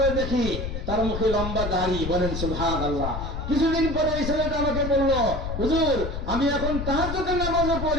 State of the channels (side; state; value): left; noise; rumble, 5 dB below the sound